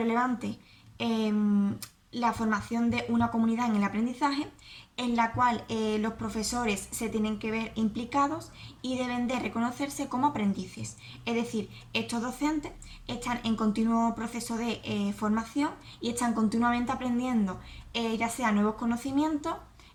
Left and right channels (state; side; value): identical; both; correlation 1.00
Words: la formación de una comunidad en el aprendizaje, en la cual los profesores se tienen que ver implicados y deben de reconocerse como aprendices. Es decir, estos docentes están en continuo proceso de formación y están continuamente aprendiendo ya sea nuevos conocimientos